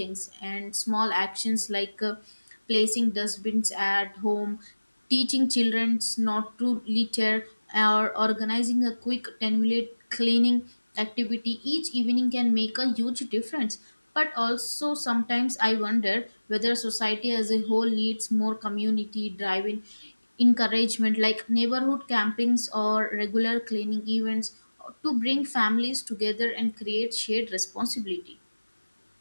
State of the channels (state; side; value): inverted; both; correlation -1.00